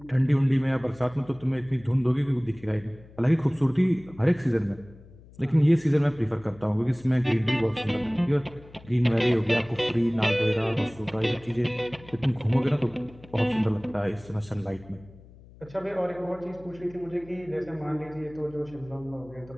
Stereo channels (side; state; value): left; noise; hum, 22 dB below the sound